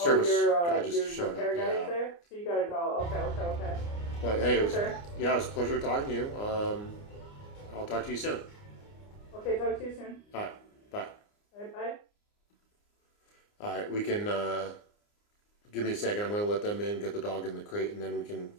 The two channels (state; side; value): late; right; 29 ms